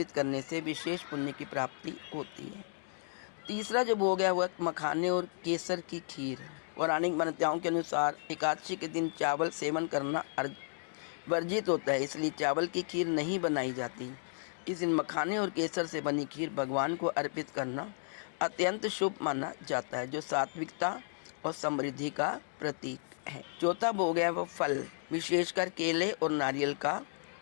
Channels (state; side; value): silent; right; digital silence